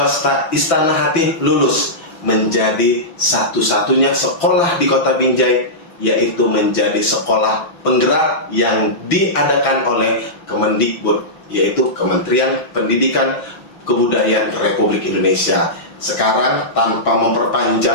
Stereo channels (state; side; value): late; right; 6.0 ms